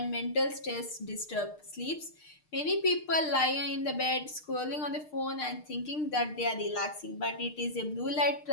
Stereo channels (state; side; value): late; right; 6.6 ms